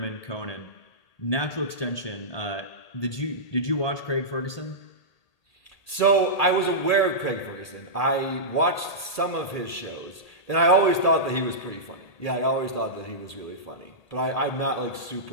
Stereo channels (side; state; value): right; late; 1.8 ms